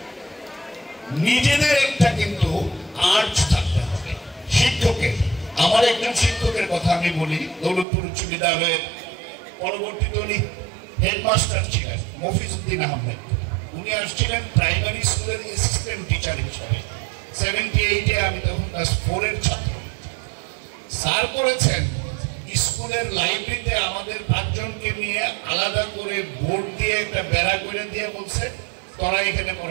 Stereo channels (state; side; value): drops out; left; at 7.9 s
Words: নিজেদের একটা কিন্তু আর্জ থাকতে হবে শিক্ষকের। আমার একজন শিক্ষকের কথা আমি বলি, দৌলতপুর উচ্চ বিদ্যালয়ের পরবর্তীতে উনি হেডমাস্টার ছিলেন, মফিজউদ্দিন আহমেদ। উনি আসছিলেন প্রাইমারি স্কুলের অ্যাসিস্ট্যান্ট টিচার হিসাবে। 78-এ আমি তখন ক্লাস 4-এর ছাত্র। স্যার করেছেন স্কুলের লাইব্রেরিতে আমাদের 5 জনকে নিয়ে আলাদা করে বোর্ড দিয়ে একটা বেড়া করে দিয়ে বলছে তোরা এখানে